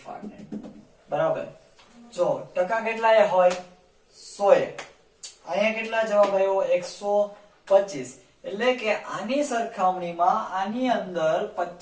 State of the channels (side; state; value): both; identical; correlation 1.00